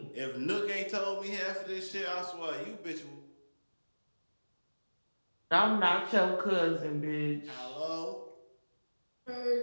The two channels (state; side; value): inverted; both; correlation -1.00